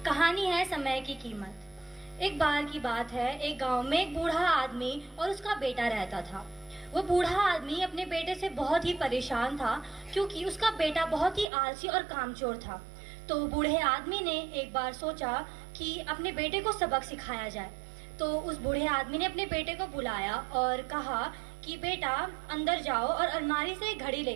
कहानी है समय की कीमत। एक बार की बात है, एक गांव में एक बूढ़ा आदमी और उसका बेटा रहता था। वो बूढ़ा आदमी अपने बेटे से बहुत ही परेशान था, क्योंकि उसका बेटा बहुत ही आलसी और कामचोर था। तो बूढ़े आदमी ने एक बार सोचा कि अपने बेटे को सबक सिखाया जाए। तो उस बूढ़े आदमी ने अपने बेटे को बुलाया और कहा कि बेटा अंदर जाओ और अलमारी से एक घड़ी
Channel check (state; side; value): drops out; left; at 11.5 s